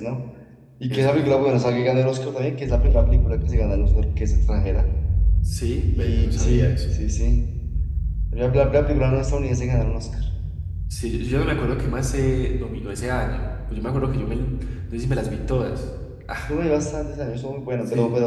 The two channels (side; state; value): both; identical; correlation 1.00